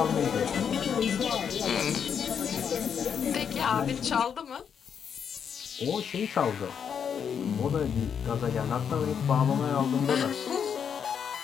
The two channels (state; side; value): quieter; right; 7.5 dB